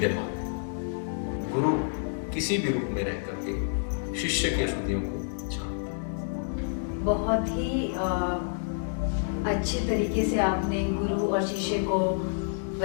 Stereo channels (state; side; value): silent; right; digital silence